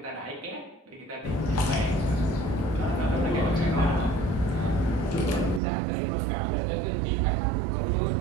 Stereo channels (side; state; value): left; drops out; at 5.6 s